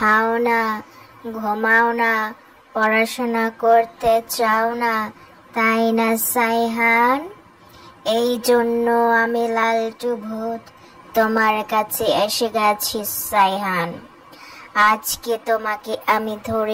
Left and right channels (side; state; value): both; identical; correlation 1.00